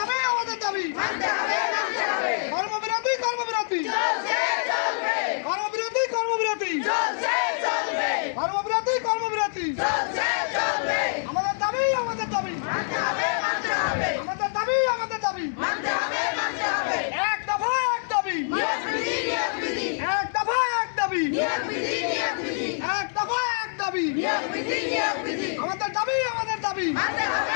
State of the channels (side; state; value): right; silent; digital silence